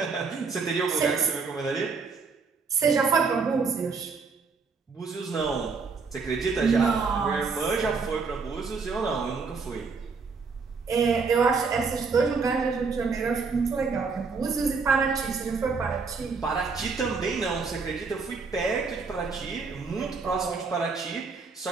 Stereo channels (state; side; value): quieter; left; 4.8 dB